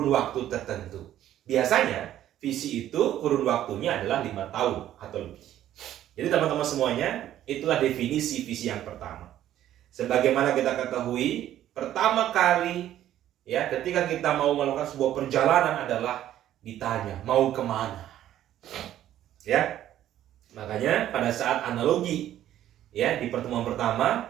waktu tertentu. Biasanya visi itu kurun waktunya adalah 5 tahun atau lebih. Jadi teman-teman semuanya, itulah definisi visi yang pertama. Sebagaimana kita ketahui, pertama kali, ya, ketika kita mau melakukan sebuah perjalanan adalah ditanya mau kemana, ya. Makanya pada saat analogi, ya, di pertemuan pertama,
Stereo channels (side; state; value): left; quieter; 12.2 dB